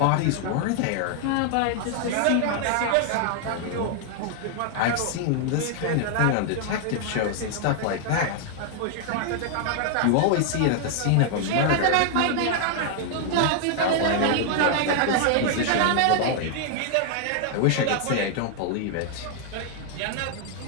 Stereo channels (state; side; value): different; both; correlation 0.00